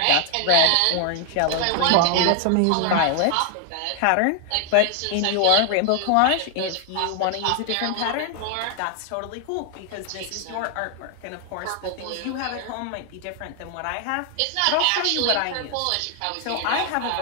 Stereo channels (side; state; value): both; different; correlation 0.00